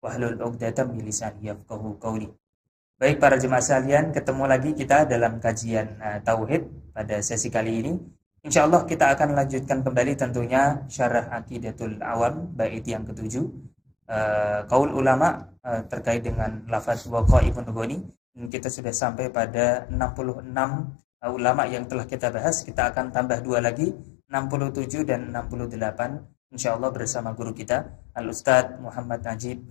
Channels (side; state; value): right; drops out; at 18.5 s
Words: 'uqdatam min lisani yafqahu qawli. Baik para jemaah sekalian, ketemu lagi kita dalam kajian tauhid pada sesi kali ini. Insya Allah kita akan lanjutkan kembali tentunya syarah Aqidatul Awam bait yang ketujuh, qaul ulama terkait dengan lafaz waqa'imun ghani. Kita sudah sampai pada 66 ulama yang telah kita bahas. Kita akan tambah 2 lagi, 67 dan 68 insya Allah bersama guru kita Al-Ustadz Muhammad Najib